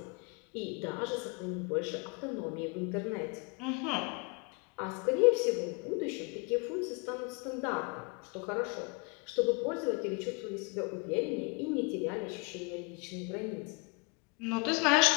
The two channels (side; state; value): right; quieter; 32.0 dB